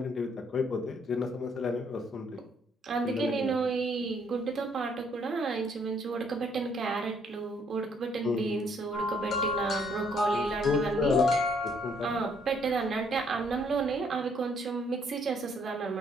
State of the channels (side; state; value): both; normal; correlation 0.67